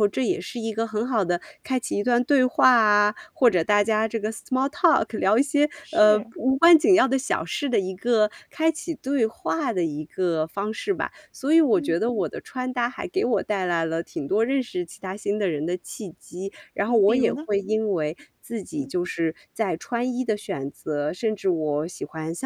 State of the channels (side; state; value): both; identical; correlation 1.00